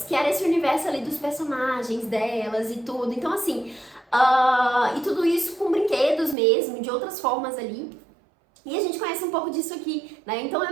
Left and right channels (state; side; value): drops out; left; at 6.4 s